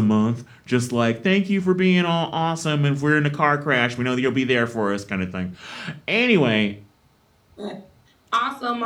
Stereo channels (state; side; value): identical; both; correlation 1.00